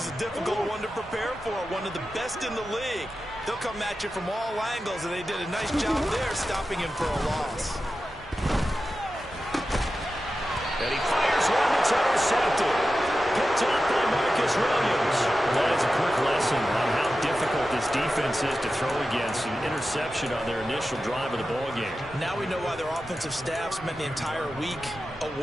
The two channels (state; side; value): normal; both; correlation 0.92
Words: a difficult one to prepare for, one of the best in the league. They'll come at you from all angles, and they did a nice job there stopping him for a loss. And he fires one that's intercepted. Picked up by Marcus Williams. That is a quick lesson on how difficult this defense is to throw against. An interception on their initial drive of the ballgame. Now we know why their offensive staff spent the entire week